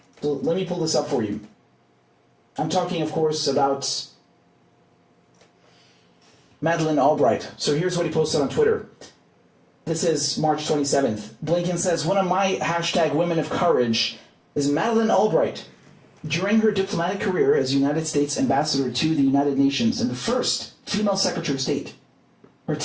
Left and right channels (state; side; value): identical; both; correlation 1.00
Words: So let me pull this up for you. I'm talking, of course, about Madeleine Albright. So here's what he posted on Twitter. This is March 27th. Blinken says, one of my #women of courage is Madeleine Albright. During her diplomatic career as United States ambassador to the United Nations and the first female Secretary of State, her